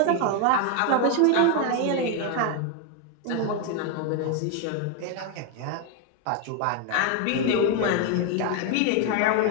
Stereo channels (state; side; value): different; both; correlation 0.01